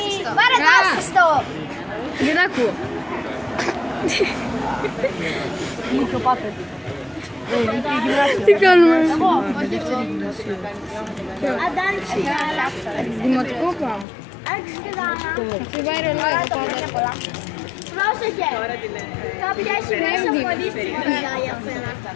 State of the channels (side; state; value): right; drops out; at 14.1 s